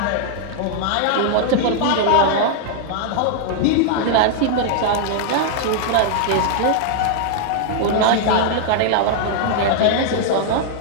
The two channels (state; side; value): different; both; correlation -0.01